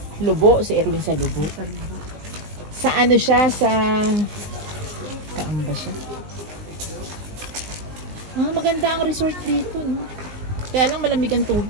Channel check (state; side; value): late; left; 19 ms